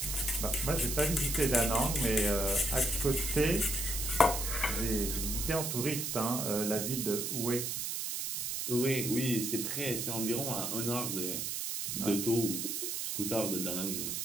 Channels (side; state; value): right; noise; hiss, 2 dB below the sound